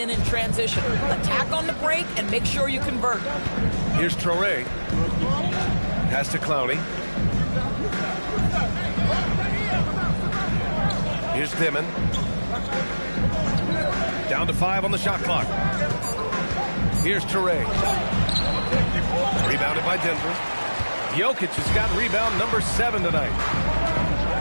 in transition. Attack on the break and make sure you convert. Here's Traore. Pass to Clowney. Here's Dimon. Down to 5 on the shot clock. Here's Traore. Rebounded by Denver. Jokic has got rebound number 7 tonight.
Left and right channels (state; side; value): inverted; both; correlation -1.00